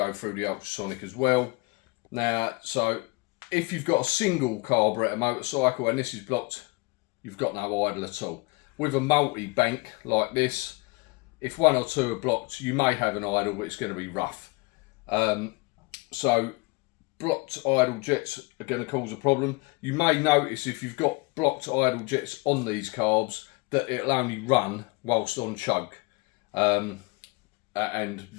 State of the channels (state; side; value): quieter; right; 26.6 dB